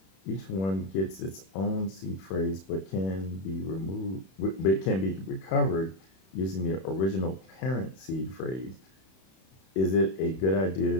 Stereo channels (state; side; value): late; right; 31 ms